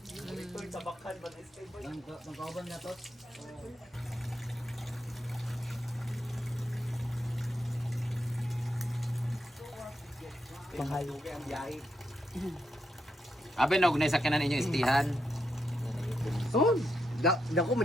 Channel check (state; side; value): normal; both; correlation 0.82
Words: Magkauban na to. Panghayo kay ang biyahe. Abe na ugnay sakyanan inyo istihan. Son, dako